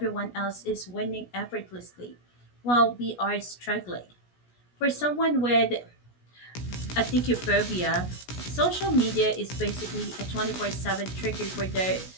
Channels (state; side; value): late; right; 16 ms